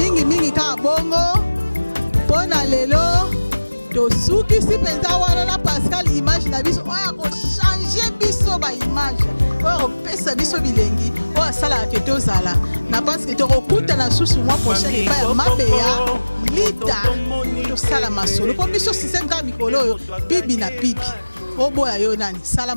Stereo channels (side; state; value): both; inverted; correlation -1.00